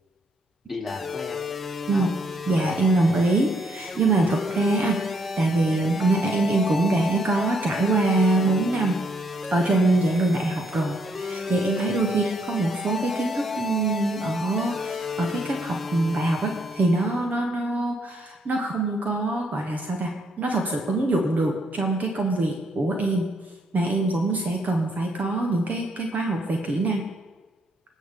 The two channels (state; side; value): normal; both; correlation 0.71